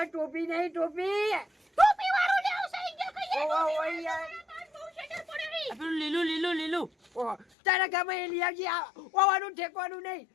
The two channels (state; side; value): drops out; right; at 7.5 s